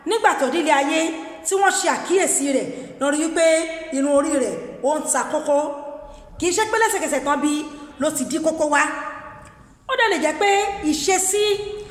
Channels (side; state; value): both; identical; correlation 1.00